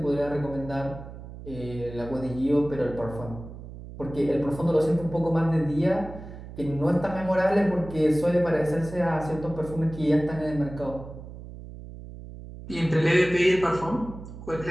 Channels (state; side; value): noise; right; hum, 13 dB below the sound